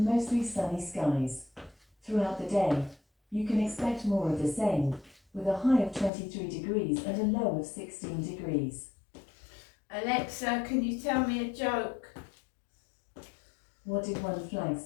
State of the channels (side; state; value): right; drops out; at 6.1 s